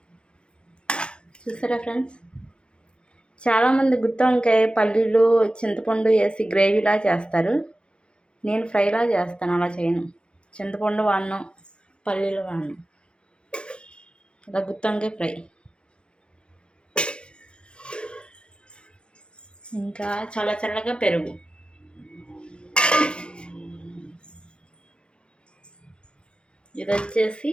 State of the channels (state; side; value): late; right; 0.055 ms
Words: చూసారా ఫ్రెండ్స్, చాలామంది గుత్తి వంకాయ పల్లీలు చింతపండు వేసి గ్రేవీలా చేస్తారు. నేను ఫ్రైలా చేస్తాను, అలా చేయను. చింతపండు వాడను, పల్లీలు వాడను. ఇలా గుత్తి వంకాయ ఫ్రై. ఇంకా చల్లగా పెరుగు. ఇది వచ్చేసి